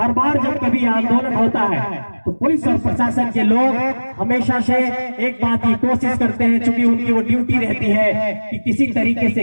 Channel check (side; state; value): both; inverted; correlation -1.00